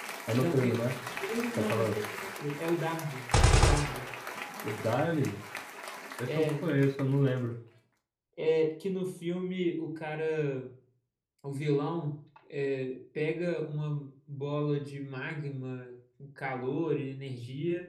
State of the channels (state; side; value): identical; both; correlation 1.00